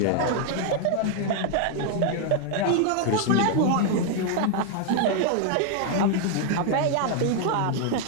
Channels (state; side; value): different; both; correlation 0.00